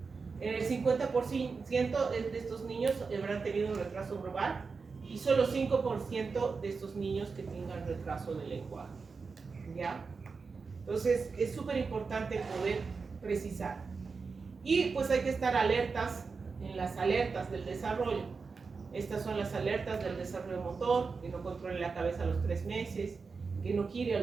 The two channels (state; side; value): quieter; left; 4.8 dB